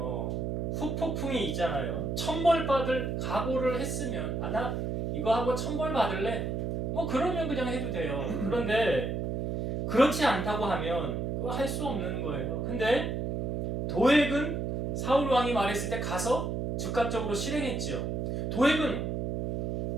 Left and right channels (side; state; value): right; noise; hum, 1 dB below the sound